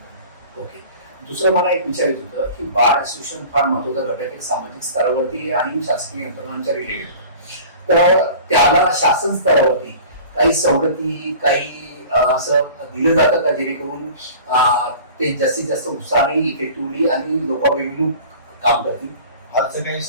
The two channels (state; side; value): inverted; both; correlation -0.42